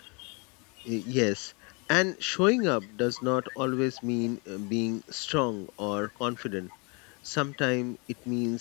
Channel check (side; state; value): right; quieter; 31.5 dB